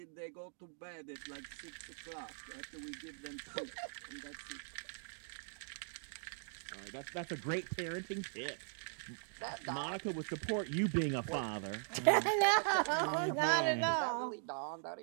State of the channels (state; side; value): silent; left; digital silence